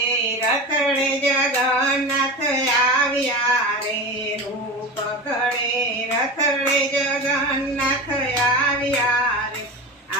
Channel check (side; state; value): both; normal; correlation 0.26